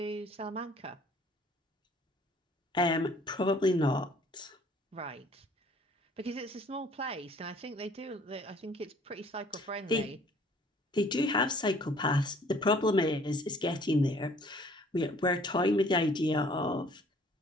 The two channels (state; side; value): normal; both; correlation 0.56